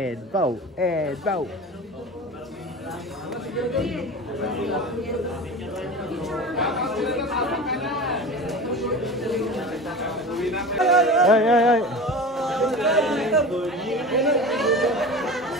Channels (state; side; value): normal; both; correlation 0.32